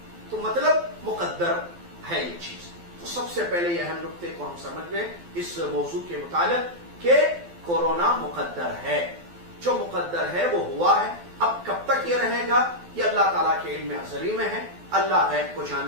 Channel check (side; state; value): left; late; 12 ms